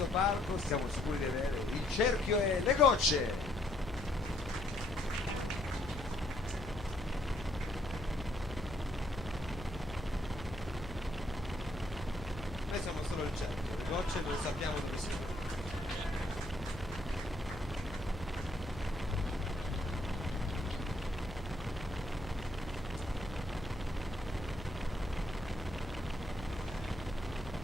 palco siamo sicuri di avere il cerchio e le gocce. Noi siamo solo il cerchio, le gocce non sappiamo dove siano.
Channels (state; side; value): noise; left; hum, 12 dB below the sound